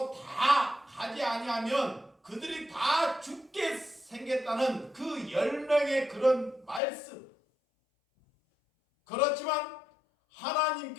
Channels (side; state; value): right; drops out; at 6.8 s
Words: 다 가지 아니하면 그들이 다 죽게 생겼다는 그 10명의 그런 말씀. 그렇지만